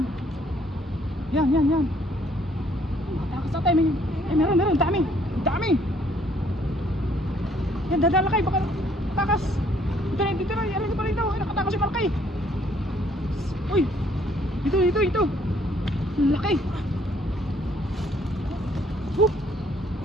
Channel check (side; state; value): both; normal; correlation 0.64